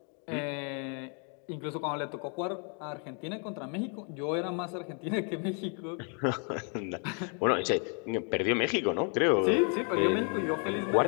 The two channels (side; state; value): right; quieter; 39.5 dB